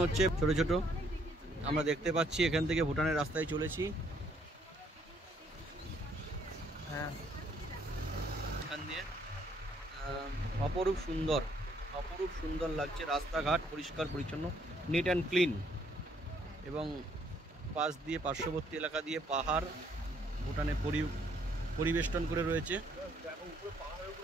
হচ্ছে ছোট ছোট। আমরা দেখতে পাচ্ছি এখান থেকে ভুটানের রাস্তায় চলেছি। হ্যাঁ, এখান দিয়ে অপরূপ সুন্দর লাগছে। রাস্তাঘাট পরিষ্কার পরিচ্ছন্ন, নিট অ্যান্ড ক্লিন, এবং পাশ দিয়ে পার্শ্ববর্তী এলাকা দিয়ে পাহাড় ভুটানে পরিবেষ্টন করে রয়েছে।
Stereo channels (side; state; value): both; normal; correlation 0.67